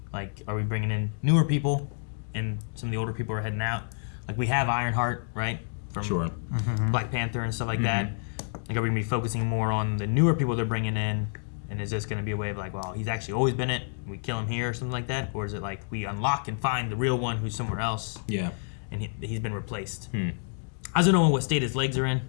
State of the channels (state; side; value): silent; right; digital silence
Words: Like, are we bringing in newer people and some of the older people are heading out? Like, we have Ironheart, right? From Sure. Black Panther and stuff like Mm-hmm. that. Like, are we going to be focusing more on the newer people they're bringing in? And is this going to be a way of like, well, he's actually always been it, and we kill him here or something like that? Or is it like we unlock and find the real one who's somewhere else, Yeah. and he's been replaced? I don't know what state his legs are in.